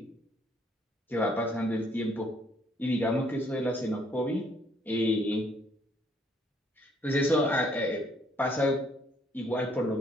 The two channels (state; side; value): normal; both; correlation 0.65